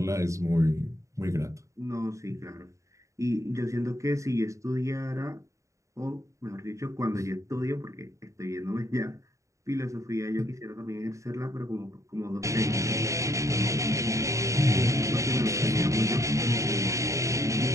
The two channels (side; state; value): left; late; 0.15 ms